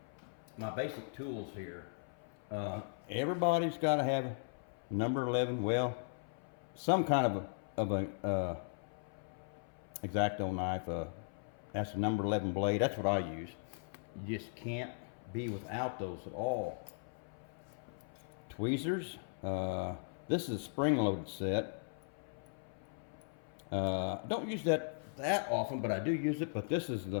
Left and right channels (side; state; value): right; silent; 52 dB below the other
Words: basic tools here. Everybody's got to have number 11, well, some kind of a X-Acto knife. That's a number 11 blade. That's what I use. You just can't be without those at all. Tweezers. This is a spring-loaded set. Don't use that often, but I do use it. But this is